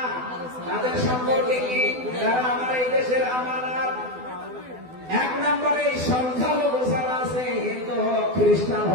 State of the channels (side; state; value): left; late; 12 ms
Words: তাদের সম্পর্কে কি? তারা আমার এই দেশের আমানত। এক নম্বরে এই সংখ্যালঘু যারা আছে, হিন্দু হোক, খ্রিস্টান